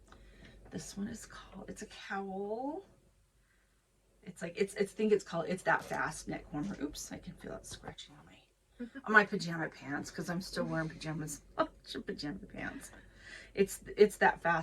this one is called, it's a cowl. It's like, it's That Fast Neck Warmer. Oops, I can feel it scratching on my pajama pants, because I'm still wearing pajamas. Pajama pants. It's That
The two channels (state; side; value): identical; both; correlation 1.00